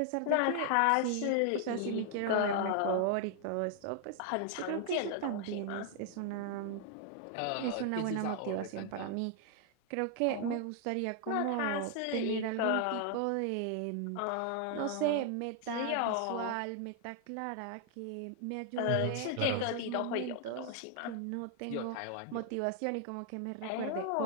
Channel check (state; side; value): different; both; correlation 0.00